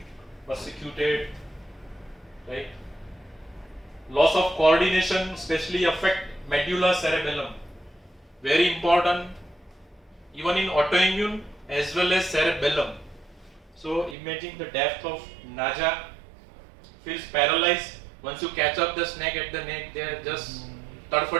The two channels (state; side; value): drops out; left; at 14.2 s